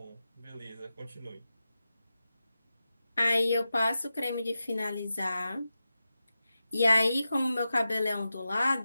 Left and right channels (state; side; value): inverted; both; correlation -0.92